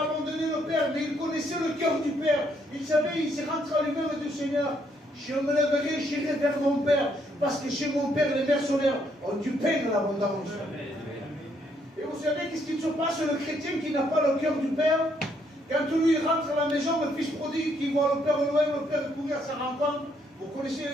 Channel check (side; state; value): both; normal; correlation 0.71